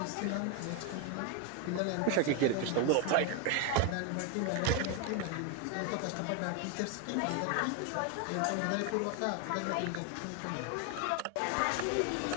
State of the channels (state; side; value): different; both; correlation 0.01